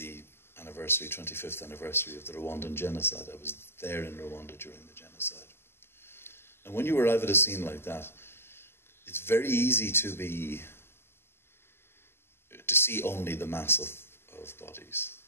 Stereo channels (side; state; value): right; late; 0.11 ms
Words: 25th anniversary of the Rwandan genocide. I was there in Rwanda during the genocide. And when you arrive at a scene like that, it's very easy to see only the mass of bodies.